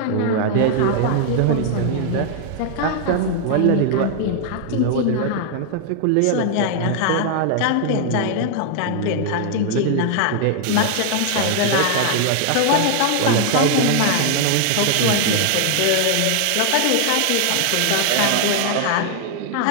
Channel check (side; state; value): both; different; correlation 0.00